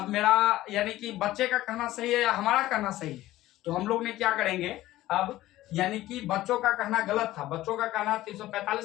मेरा यानी कि बच्चे का कहना सही है या हमारा कहना सही है। तो हम लोग ने क्या करेंगे अब, यानी कि बच्चों का कहना गलत था, बच्चों का कहना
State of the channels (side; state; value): right; quieter; 15.8 dB